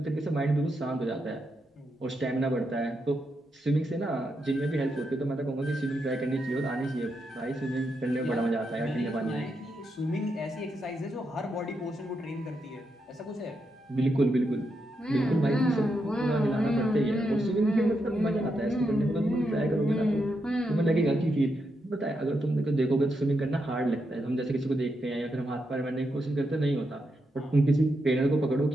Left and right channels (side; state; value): both; normal; correlation 0.83